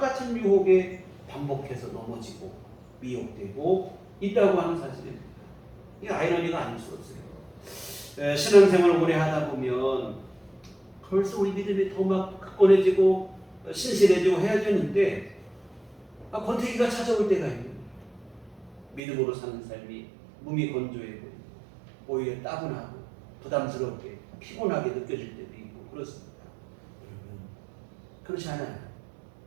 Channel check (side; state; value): left; drops out; at 19.0 s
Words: 유혹에 반복해서 넘어지고 미혹되고 있다고 하는 사실입니다. 이게 아이러니가 아닐 수 없어요. 신앙생활을 오래 하다 보면 벌써 우리 믿음이 더 막 굳건해지고 신실해지고 해야 되는데 권태기가 찾아올 때가 있는 거예요. 믿음으로 사는 삶이 몸이 건조해 보이고 오히려 따분하고 부담스럽게 피곤하게 느껴질 때도 있고 그렇습니다. 여러분, 그렇지 않아요.